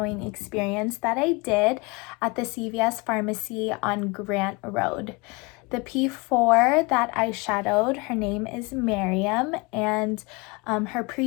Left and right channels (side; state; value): right; quieter; 26.7 dB